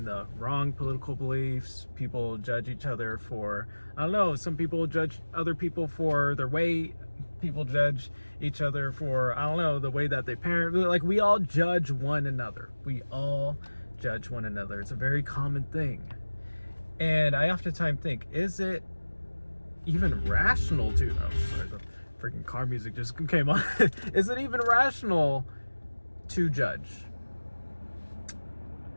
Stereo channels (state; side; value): inverted; both; correlation -1.00